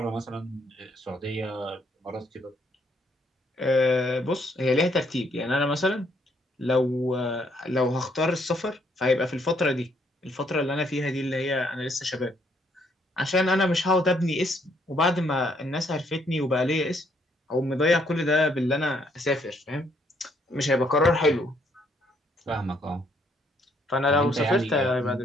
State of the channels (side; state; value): both; normal; correlation 0.69